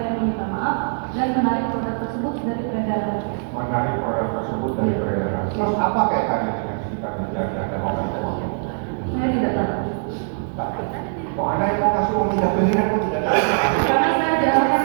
meminta maaf dan menarik produk tersebut dari peredaran. Menarik produk tersebut dari peredaran. Terus apa kaitannya dengan kita menjaga dan mengatur uang? Saya tidak tahu. Kok Anda yang mau kasih uang 3 miliar kok tidak tahu? Karena saya diarahkan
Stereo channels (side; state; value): left; silent; digital silence